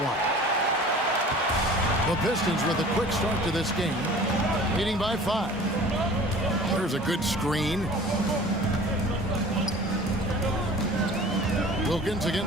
The Pistons with a quick start to this game. Leading by 5. There's a good screen. Wilkins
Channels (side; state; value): both; normal; correlation 0.44